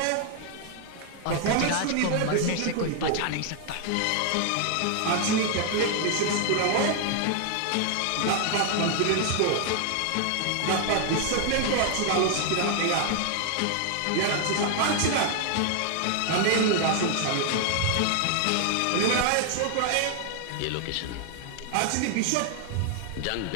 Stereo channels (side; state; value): both; different; correlation 0.00